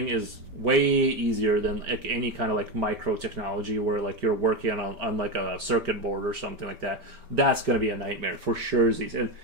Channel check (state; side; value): late; left; 5.0 ms